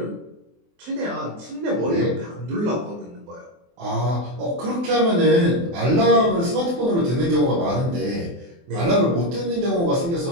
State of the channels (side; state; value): left; late; 24 ms